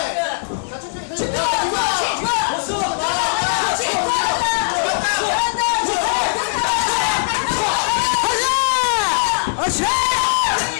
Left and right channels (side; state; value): right; silent; 63 dB below the other